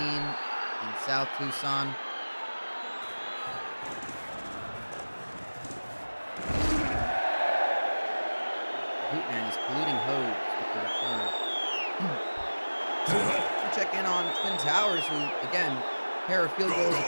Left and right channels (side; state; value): both; inverted; correlation -1.00